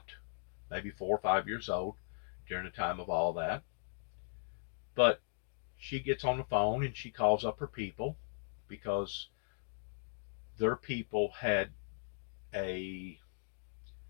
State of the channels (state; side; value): silent; right; digital silence